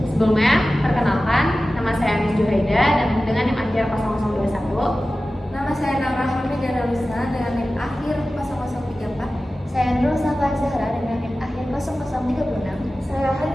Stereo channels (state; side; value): normal; both; correlation 0.95